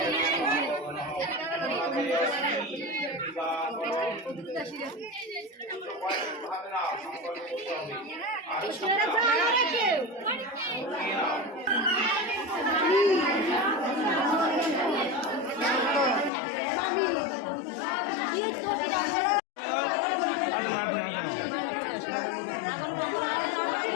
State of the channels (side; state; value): right; drops out; at 16.3 s